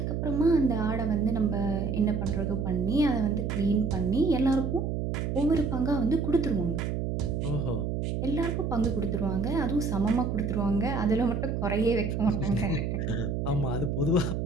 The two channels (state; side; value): noise; right; hum, 1 dB below the sound